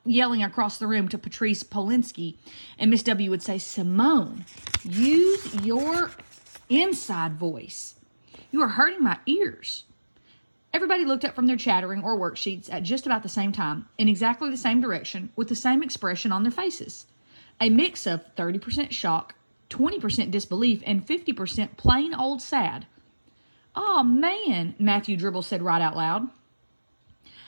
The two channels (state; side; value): inverted; both; correlation -1.00